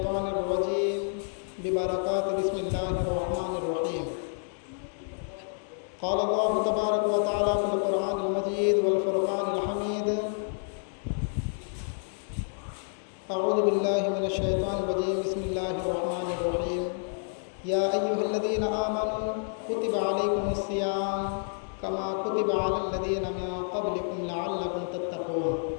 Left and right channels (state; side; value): silent; right; digital silence